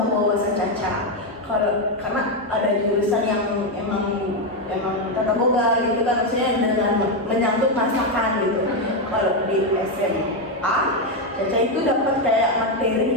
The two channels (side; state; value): both; normal; correlation 0.06